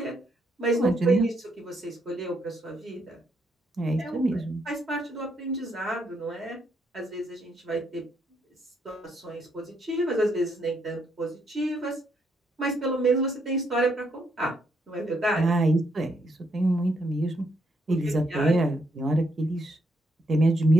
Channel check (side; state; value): both; normal; correlation 0.75